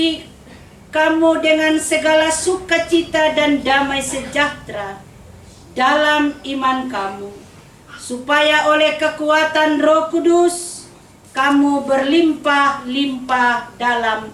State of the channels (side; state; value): both; identical; correlation 1.00